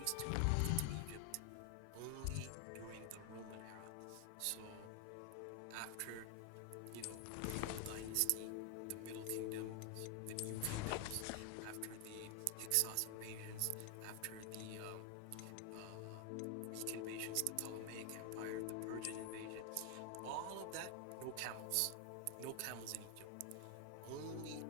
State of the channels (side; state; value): both; different; correlation 0.00